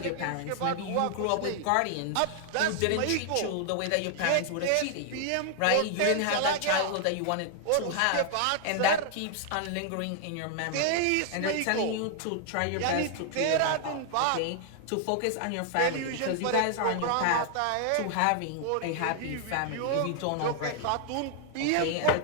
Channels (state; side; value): different; both; correlation 0.00